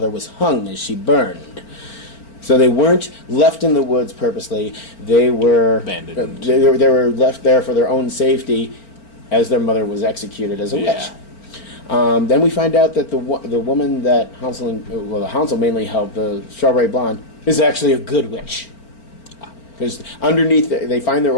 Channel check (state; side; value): late; right; 4.4 ms